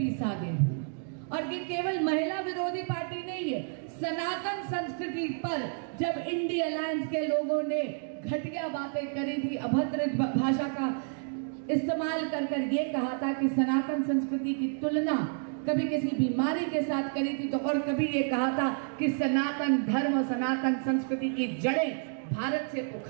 साधे। और ये केवल महिला विरोधी पार्टी नहीं है, सनातन संस्कृति पर जब इंडिया अलायंस के लोगों ने घटिया बातें करी थी, अभद्र भाषा का इस्तेमाल कर ये कहा था कि सनातन संस्कृति की तुलना कभी किसी बीमारी के साथ करी थी, तो और कभी ये कहा था कि सनातन धर्म और सनातन संस्कृति की जड़ें भारत से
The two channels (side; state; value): left; silent; 58 dB below the other